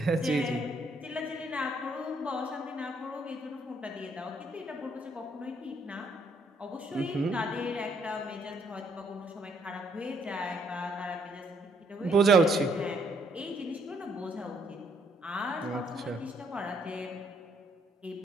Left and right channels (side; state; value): both; normal; correlation 0.69